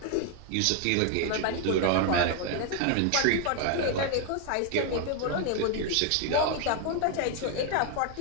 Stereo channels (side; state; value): both; different; correlation 0.01